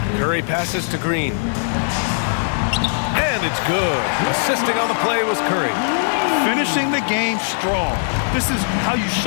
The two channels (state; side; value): silent; right; digital silence